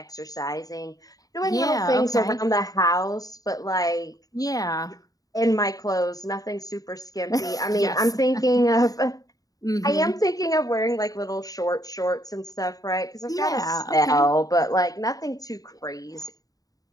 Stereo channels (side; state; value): right; late; 0.18 ms